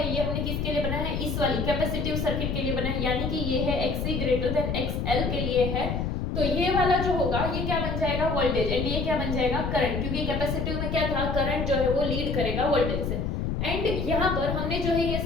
ये हमने किसके लिए बनाया है, इस वाली कैपेसिटिव सर्किट के लिए बनाया है, यानी कि ये है XC ग्रेटर देन XL के लिए है। तो ये वाला जो होगा ये क्या बन जाएगा, वोल्टेज, एंड ये क्या बन जाएगा, करंट, क्योंकि कैपेसिटिव में क्या था, करंट जो है वो लीड करेगा वोल्टेज से। एंड यहाँ पर हमने जो है ये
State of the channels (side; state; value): left; noise; rumble, 1 dB below the sound